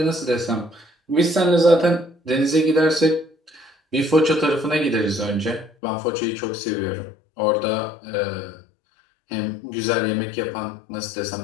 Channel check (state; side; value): drops out; right; at 5.7 s